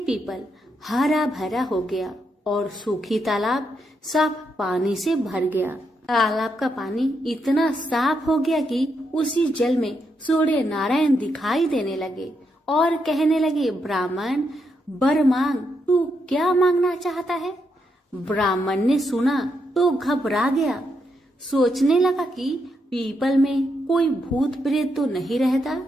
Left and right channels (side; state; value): both; normal; correlation 0.80